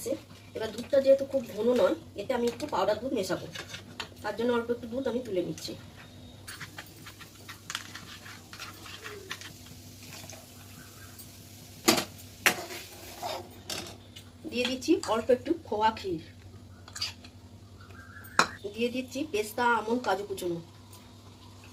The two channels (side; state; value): both; identical; correlation 1.00